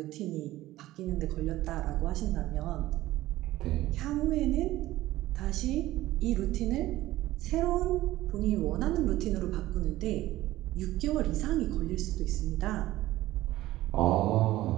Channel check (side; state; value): left; quieter; 16.1 dB